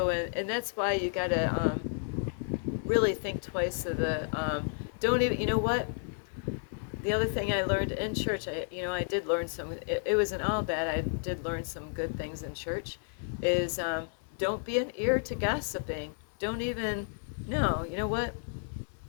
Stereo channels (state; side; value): silent; right; 57 dB below the other